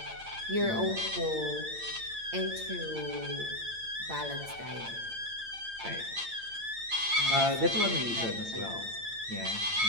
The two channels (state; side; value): late; left; 8.8 ms